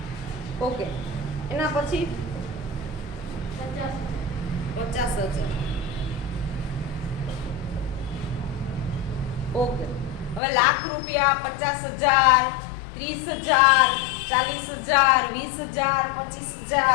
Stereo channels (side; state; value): right; drops out; at 10.4 s